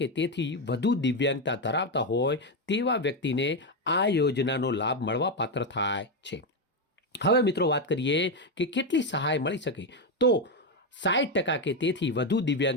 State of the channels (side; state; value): both; normal; correlation 0.07